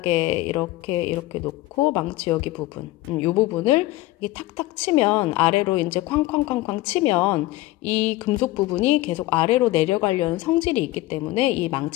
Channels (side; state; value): right; quieter; 17.9 dB